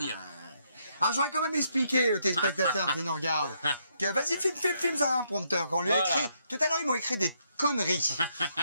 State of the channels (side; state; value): both; inverted; correlation -0.75